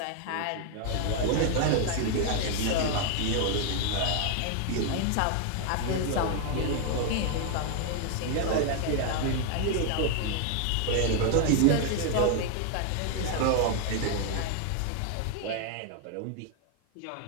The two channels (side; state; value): both; different; correlation 0.00